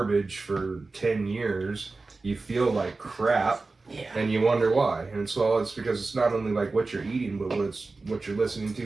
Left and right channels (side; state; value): left; quieter; 3.7 dB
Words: for 10 years. You feel like crap, Yeah. and you wonder why. And so it's because it's not only like what you're eating, but what you're listening to,